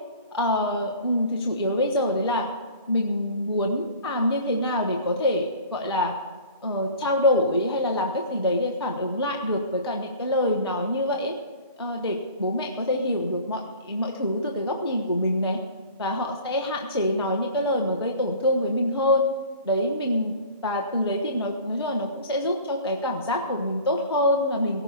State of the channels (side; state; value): both; inverted; correlation -0.43